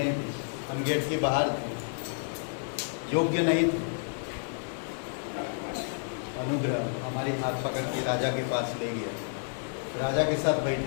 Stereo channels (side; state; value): right; silent; digital silence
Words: थे, हम गेट के बाहर थे, योग्य नहीं थे। अनुग्रह हमारे हाथ पकड़ के राजा के पास ले गया, राजा के साथ